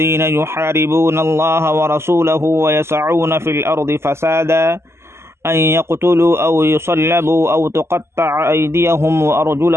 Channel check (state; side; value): late; left; 0.12 ms